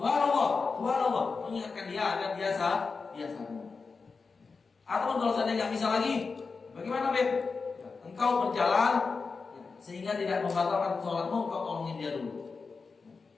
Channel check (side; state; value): right; quieter; 4.6 dB